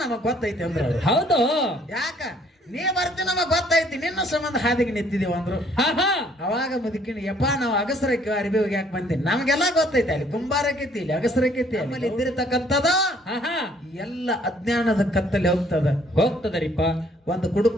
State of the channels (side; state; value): both; normal; correlation 0.62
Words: ನಮಗ್ ಗೊತ್ತೈತಿ ಅಂದ್ರ. ಹೌದು. ಯಾಕ ನೀ ಬರ್ತೀನಿ ನಮಗ್ ಗೊತ್ತೈತಿ, ನಿನ್ನ ಸಂಬಂಧ ಹಾದಿಗೆ ನಿಂತಿದೀವ ಅಂದ್ರು. ಅವಾಗ ಮುದುಕಿನ ಯಪ್ಪ ನಾವು ಅಗಸರಕ್ಕೆ ಅರಿಬಿ ಹೋಗ್ಯಾಕ ಬಂದೀನಿ, ನಮ್ಗೆಲ್ಲಾ ಗೊತ್ತೈತಿ ಅಲ್ಲಿ ಕುಂಬಾರಕೈತಿ ಇಲ್ಲಿ ಅಗಸರಕೈತಿ ಆಮೇಲೆ ಇದ್ದಿರತಕ್ಕಂಥದ ಎಲ್ಲ ಅಜ್ಞಾನದ ಕತ್ತಲ್ಲಿ ಹೋಗ್ತದರಿಪ್ಪ. ಒಂದು